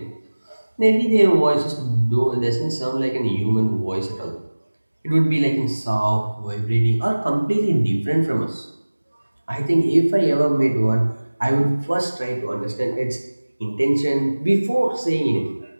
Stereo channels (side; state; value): both; inverted; correlation -1.00